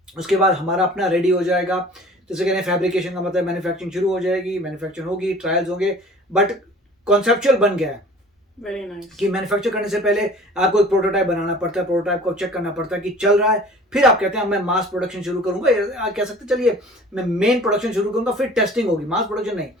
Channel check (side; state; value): both; normal; correlation 0.46